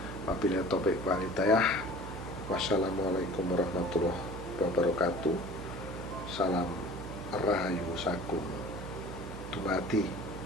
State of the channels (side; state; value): right; noise; hum, 10 dB below the sound